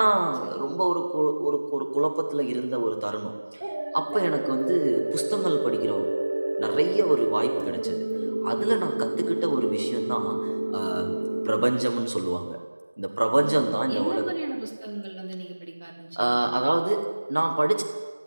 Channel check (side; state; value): both; inverted; correlation -1.00